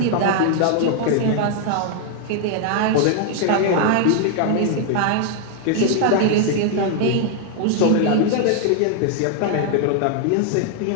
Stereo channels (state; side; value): different; both; correlation 0.00